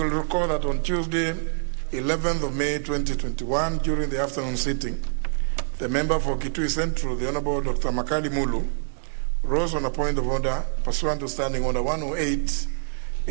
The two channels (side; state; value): left; silent; digital silence